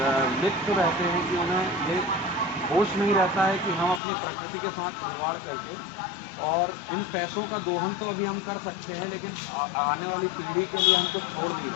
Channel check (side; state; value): right; drops out; at 4.0 s